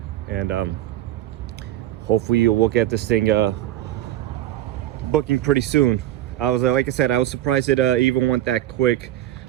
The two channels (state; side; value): quieter; left; 13.7 dB